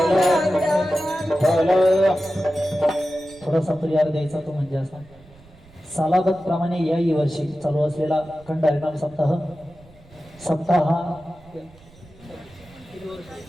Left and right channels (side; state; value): right; noise; rumble, 25 dB below the sound